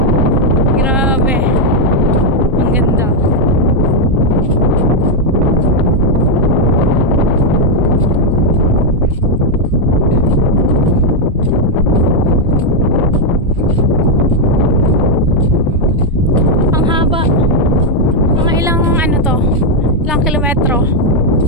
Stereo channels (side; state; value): both; normal; correlation 0.01